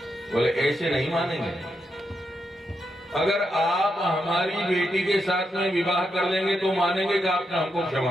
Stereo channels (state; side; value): normal; both; correlation 0.83